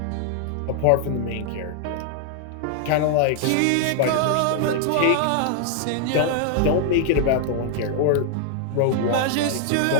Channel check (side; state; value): both; different; correlation 0.00